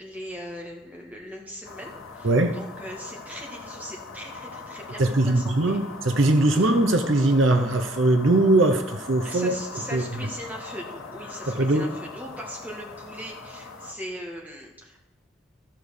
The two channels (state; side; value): normal; both; correlation 0.59